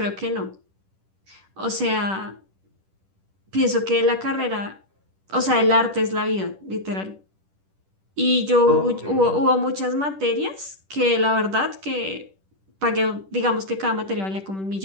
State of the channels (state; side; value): late; left; 10 ms